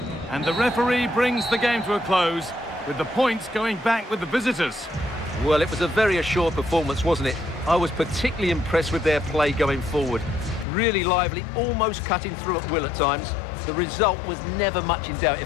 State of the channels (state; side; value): drops out; right; at 10.7 s